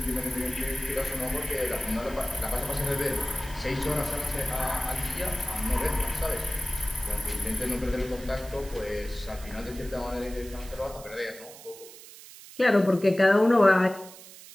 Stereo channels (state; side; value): noise; right; hiss, 17 dB below the sound